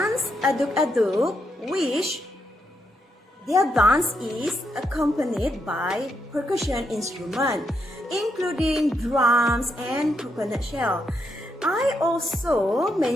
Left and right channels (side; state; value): both; normal; correlation 0.80